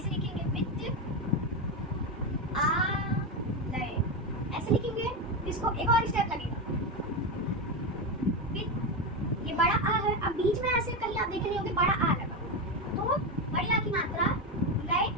लिखेंगे, विद आ लय, ऐसे लिखेंगे। इसको एक और स्टेप लगेगा, विद, ये बड़ा आ है, अब बीच में ऐसे कहीं आप देख रहे होंगे बड़ा आ लगा, तो बड़ी आ की मात्रा लय,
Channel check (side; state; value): both; normal; correlation 0.13